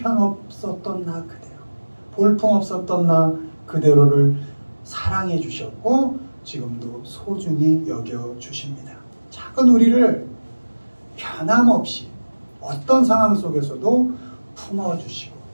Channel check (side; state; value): both; inverted; correlation -1.00